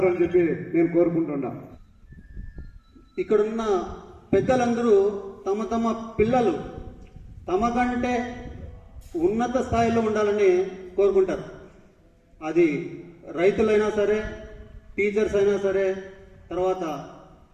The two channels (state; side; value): identical; both; correlation 1.00